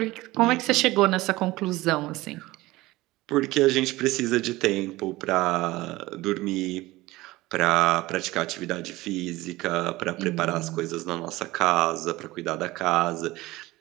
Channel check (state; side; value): quieter; left; 19.0 dB